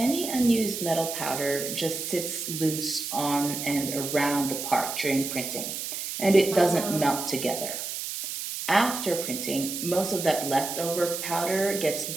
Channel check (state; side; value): noise; right; hiss, 5 dB below the sound